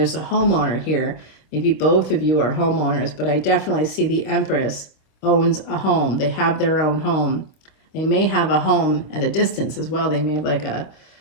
a homeowner here. Maybe both of you are homeowners, but I definitely see the Empress owns a home. They have their own home. They may have a home at a distance as well. They may have like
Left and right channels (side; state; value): right; late; 26 ms